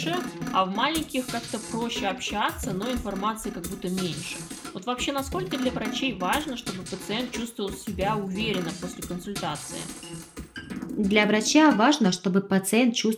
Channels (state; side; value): identical; both; correlation 1.00